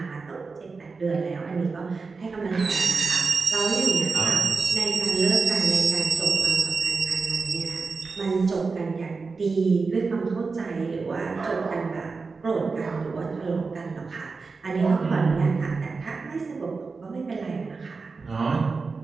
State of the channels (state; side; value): quieter; left; 4.4 dB